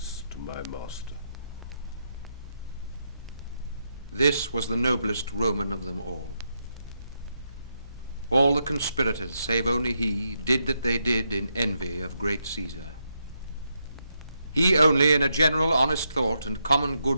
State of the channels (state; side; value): inverted; both; correlation -0.82